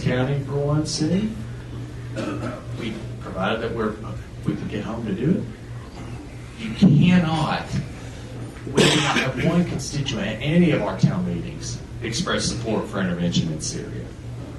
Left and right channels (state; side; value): identical; both; correlation 1.00